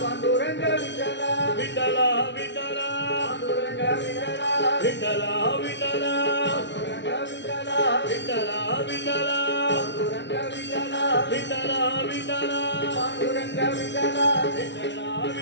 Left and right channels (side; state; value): right; late; 0.51 ms